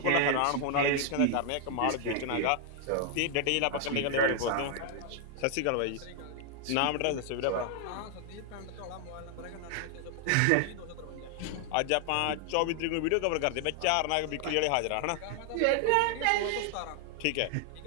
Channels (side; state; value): both; different; correlation 0.00